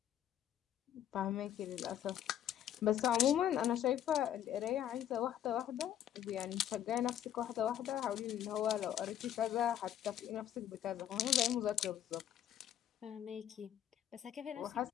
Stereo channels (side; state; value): right; quieter; 10.8 dB